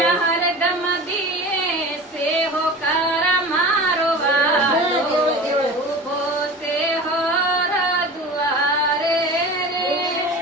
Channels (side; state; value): both; normal; correlation 0.35